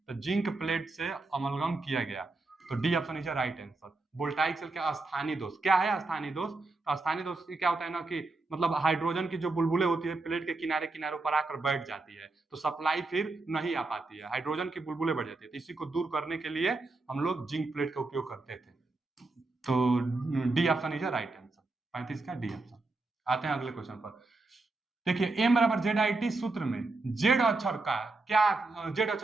तो जिंक प्लेट से अमलगम किया गया। तो D option is right answer. Voltaic cell के स्थानीय दोष क्या है, स्थानीय दोष, तो स्थानीय दोष क्या होता है ना कि मतलब हाइड्रोजन की जो बुलबुलें होती है प्लेट के किनारे किनारों पर आकर बैठ जाती है, तो सप्लाई फिर नहीं आ पाती है, हाइड्रोजन की बुलबुलें बढ़ जाती है। तो इसी को दूर करने के लिए हम लोग जिंक प्लेट का उपयोग करते थे। तो D option is right answer, 35 का डी ऑप्शन। आते हैं अगले क्वेश्चन पर। देखिए m बराबर ZIT सूत्र में जेड अक्षर का क्या, जेड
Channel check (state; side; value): quieter; left; 3.3 dB